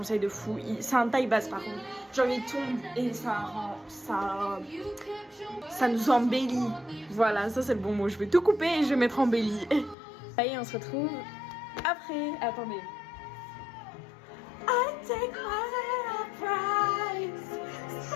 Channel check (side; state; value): right; drops out; at 10.0 s